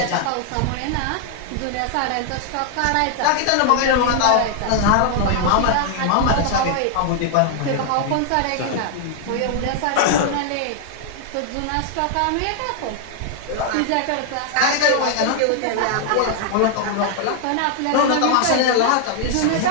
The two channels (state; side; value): different; both; correlation 0.00